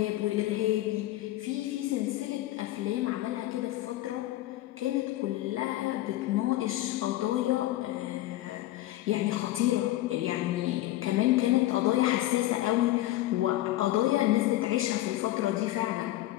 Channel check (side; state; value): right; quieter; 15.7 dB